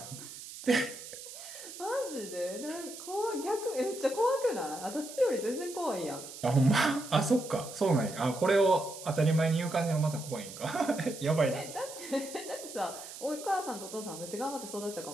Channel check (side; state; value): right; noise; hiss, 12 dB below the sound